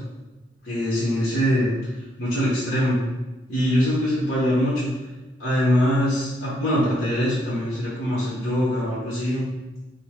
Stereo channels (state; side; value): normal; both; correlation 0.74